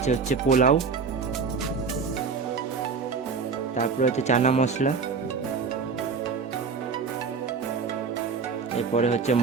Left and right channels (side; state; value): left; quieter; 5.2 dB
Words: হচ্ছে পোলাও, তারপরে হচ্ছে চানা মশলা, এরপরে হচ্ছে